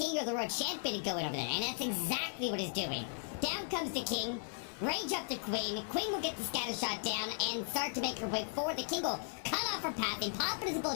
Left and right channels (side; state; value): right; silent; 53 dB below the other